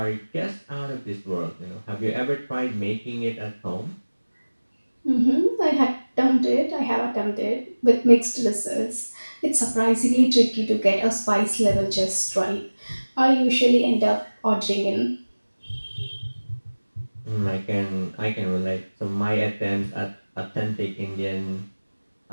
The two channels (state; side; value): inverted; both; correlation -1.00